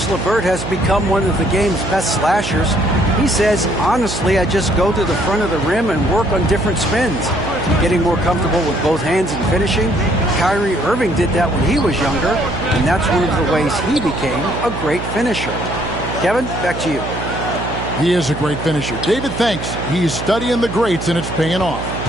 LeVert has become one of the game's best slashers. He says, honestly, I just go to the front of the rim and work on different spins. Getting more comfortable with both hands and finishing. Kyrie Irving did that when he was younger, and that's one of the ways he became a great finisher. Kevin, back to you. He is a great finisher. David, thanks. He's studying the greats, and it's paying off.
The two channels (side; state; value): right; noise; hum, 7 dB below the sound